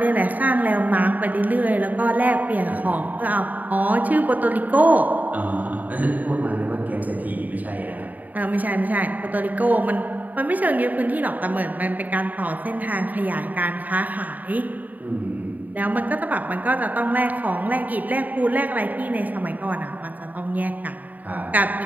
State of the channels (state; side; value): late; left; 0.079 ms